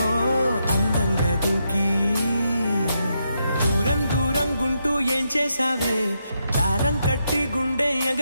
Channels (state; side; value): inverted; both; correlation -0.81